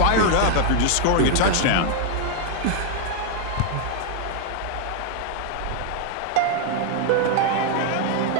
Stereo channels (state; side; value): different; both; correlation 0.00